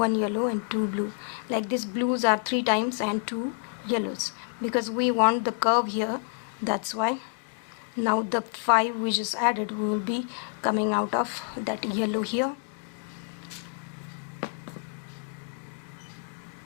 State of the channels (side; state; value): right; silent; 56 dB below the other